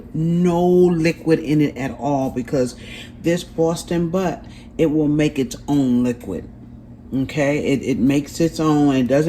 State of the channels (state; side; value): identical; both; correlation 1.00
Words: no liquid in it at all, because this Boston butt, it will make its own liquid. Okay, it makes its own. It